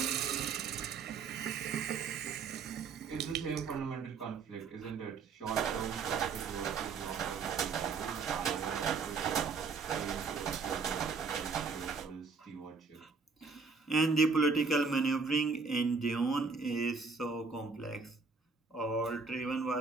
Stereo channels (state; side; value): quieter; left; 4.8 dB